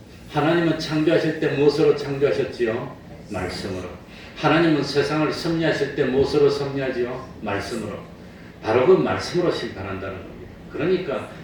하나님은 창조하실 때 무엇으로 창조하셨지요? 말씀으로. 하나님은 세상을 섭리하실 때 무엇으로 섭리하지요? 말씀으로. 바로 그 말씀으로 심판한다는 겁니다. 그러니까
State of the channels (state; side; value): identical; both; correlation 1.00